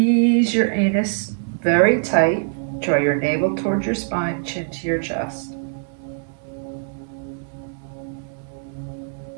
your anus very tight. Draw your navel towards your spine, chin to your chest.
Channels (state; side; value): silent; left; digital silence